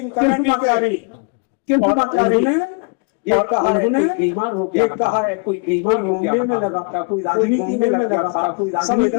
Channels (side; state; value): right; quieter; 35.6 dB